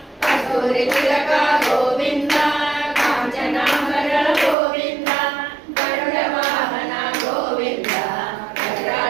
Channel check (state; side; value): drops out; left; at 4.5 s